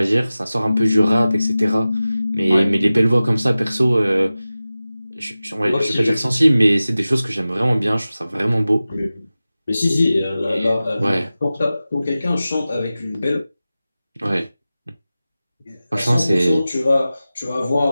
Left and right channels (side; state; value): both; inverted; correlation -0.96